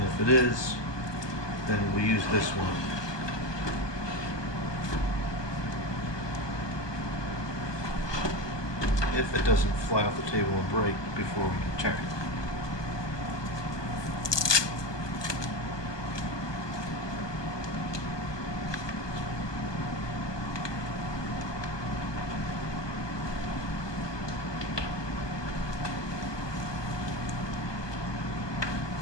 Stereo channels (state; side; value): late; right; 1.2 ms